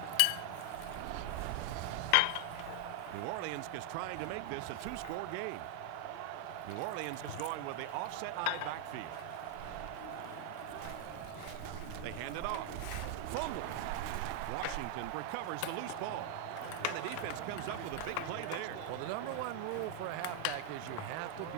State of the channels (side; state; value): both; different; correlation 0.00